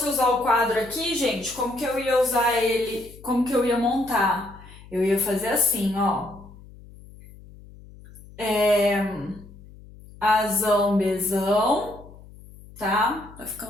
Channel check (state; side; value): noise; left; hum, 20 dB below the sound